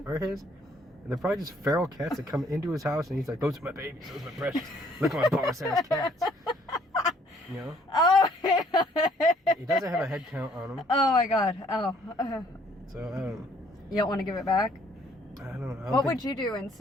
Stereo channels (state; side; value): normal; both; correlation 0.63